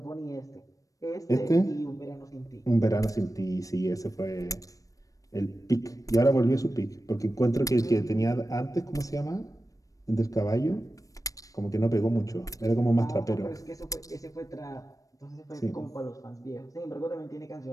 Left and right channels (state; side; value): late; right; 0.16 ms